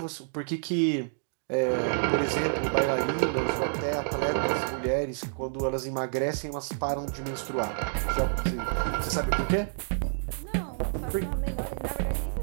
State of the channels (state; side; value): silent; left; digital silence